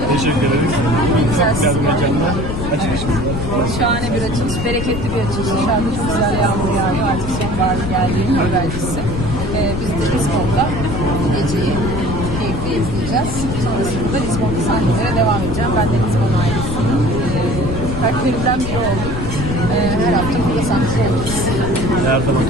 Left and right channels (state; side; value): noise; left; rumble, 5 dB below the sound